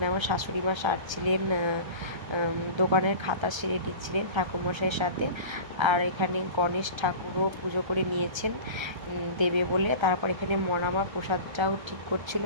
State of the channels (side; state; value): left; late; 1.3 ms